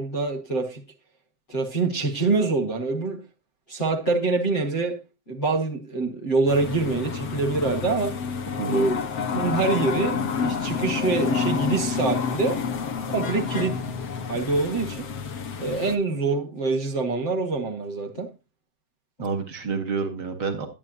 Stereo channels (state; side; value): late; right; 7.8 ms